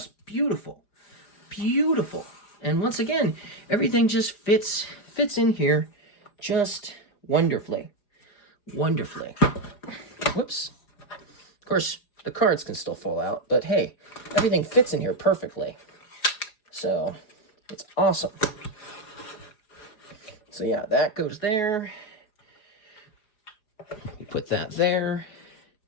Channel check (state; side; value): late; right; 4.9 ms